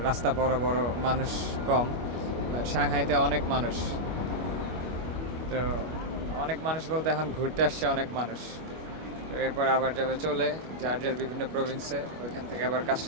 রাস্তা বড় বড়, মানুষ কম। সাংহাইতে অনেক মানুষ। তো অনেক মানুষ বলতে এখন ঘুরতে আসছে অনেক মানুষ। তো এরপর আবার যাবে চলে যার যার বিভিন্ন প্রভিন্সে, ওইখান থেকে আবার কাজ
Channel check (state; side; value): late; left; 25 ms